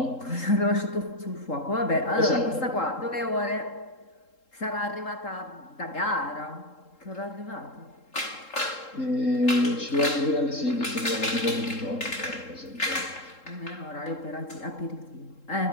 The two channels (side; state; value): right; late; 3.7 ms